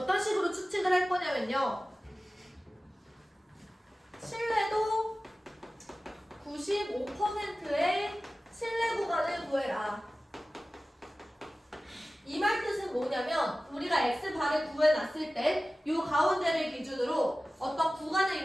식으로 추측을 할 거냐면요. 신뢰도 95%의 신뢰 구간을 구해라. 이 말 뜻은 뭐냐면 우리가 x바를 구해놨을 때 이 가운데를 기준으로 어떤 구간을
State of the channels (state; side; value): normal; both; correlation 0.96